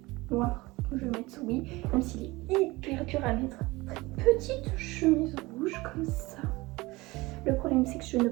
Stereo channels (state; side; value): quieter; left; 21.6 dB